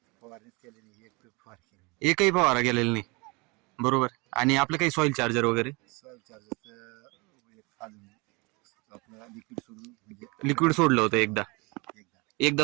फवारणीच केली नाही, एक फवारणी केली. एकही फवारा गेलेला नाही बरोबर. आणि आपलं काही सॉइल चार्जर वगैरे? सॉइल चार्जरचं खालून आपलं लिक्विड सोडून, म्हणजे लिक्विड सोडलं होतं एकदा एकदा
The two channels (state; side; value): quieter; left; 27.4 dB